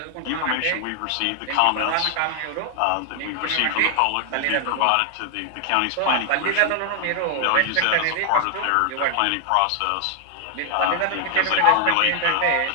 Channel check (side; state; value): both; different; correlation 0.00